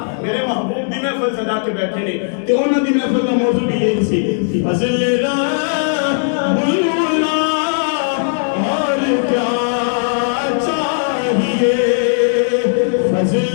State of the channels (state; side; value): silent; right; digital silence